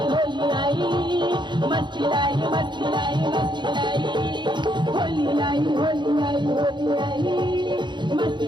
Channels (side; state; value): left; late; 0.22 ms